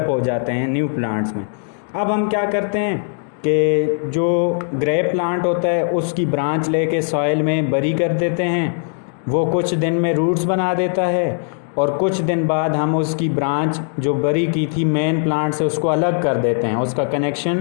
हो जाते हैं न्यू प्लांट्स में। अब हम क्या करते हैं कि जो ग्रेप प्लांट होता है उसकी ब्रांच लेके सॉइल में बरी कर देते हैं, वो कुछ दिन में रूट्स बना देता है और कुछ दिन बाद हम उसकी ब्रांच जो बरी की थी मेन प्लांट से उसको अलग कर देते हैं, उसका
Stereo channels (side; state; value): right; silent; 59 dB below the other